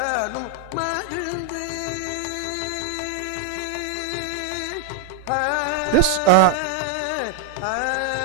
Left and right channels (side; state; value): both; different; correlation 0.01